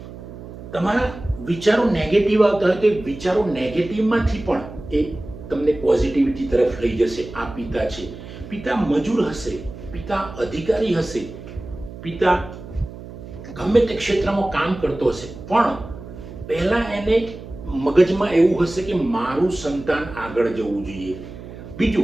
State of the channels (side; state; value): right; noise; hum, 14 dB below the sound